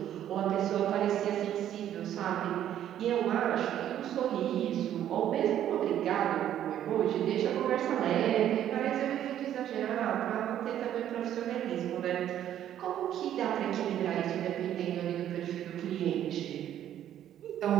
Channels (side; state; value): left; quieter; 11.1 dB